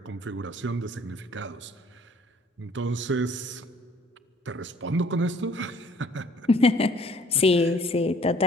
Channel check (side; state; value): both; normal; correlation 0.57